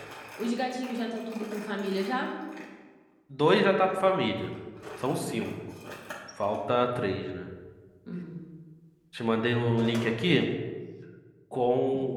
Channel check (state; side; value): identical; both; correlation 1.00